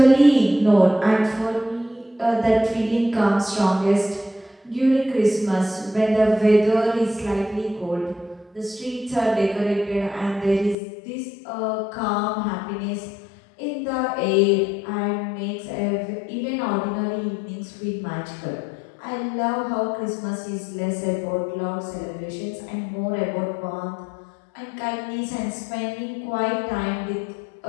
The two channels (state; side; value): drops out; right; at 10.8 s